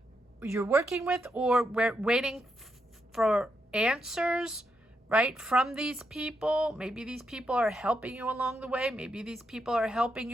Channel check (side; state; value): both; normal; correlation 0.82